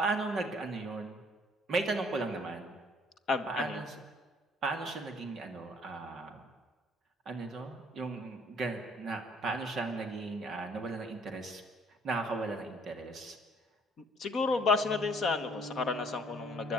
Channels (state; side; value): normal; both; correlation 0.60